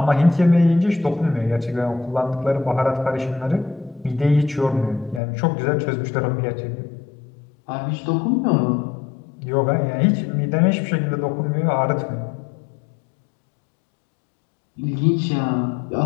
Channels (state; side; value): drops out; right; at 5.2 s